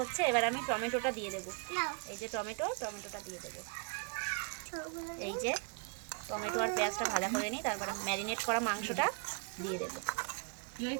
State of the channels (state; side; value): quieter; left; 36.9 dB